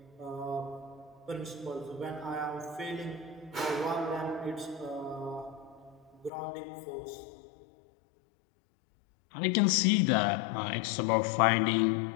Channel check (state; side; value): drops out; right; at 6.3 s